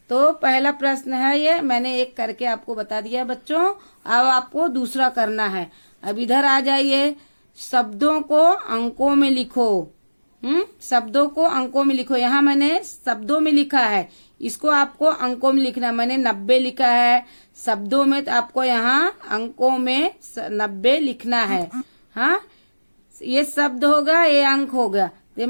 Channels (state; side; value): inverted; both; correlation -1.00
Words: तो पहला प्रश्न है ये, मैंने एक करके आपको बता दिया बच्चों। अब आपको दूसरा करना है। अब इधर आ जाइए, शब्दों को अंकों में लिखो। शब्दों को अंकों में लिखो। यहाँ मैंने शब्दों में लिखा है, इसको आपको अंकों में लिखना है। मैंने 90 लिखा है शब्दों में, तो आपको यहाँ अंकों में 90 लिखना है। हाँ, ये शब्द होगा, ये अंक हो गया। ये